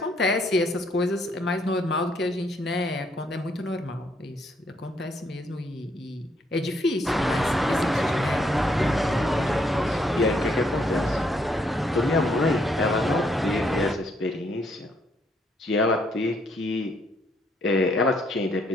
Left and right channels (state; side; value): normal; both; correlation 0.71